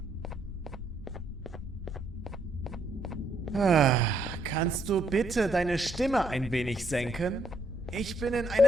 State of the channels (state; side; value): normal; both; correlation 0.72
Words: Kannst du bitte deine Stimme ein wenig senken? Ich bin in